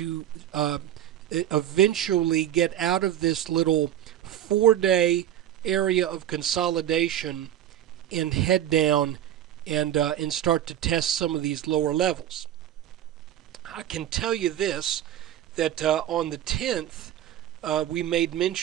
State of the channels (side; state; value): left; quieter; 11.5 dB